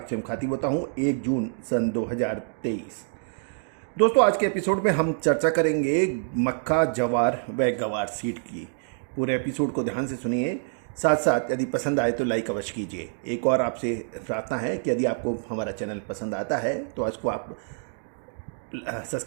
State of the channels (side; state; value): left; silent; digital silence